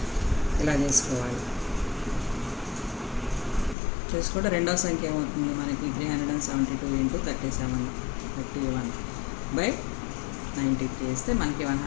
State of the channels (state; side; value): drops out; right; at 3.8 s